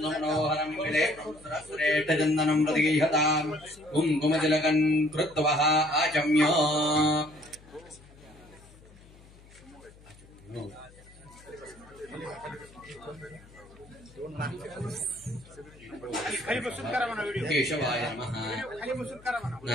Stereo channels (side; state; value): left; noise; hum, 23 dB below the sound